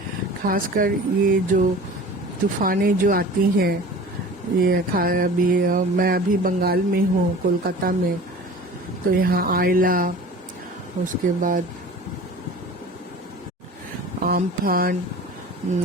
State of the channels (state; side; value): normal; both; correlation 0.41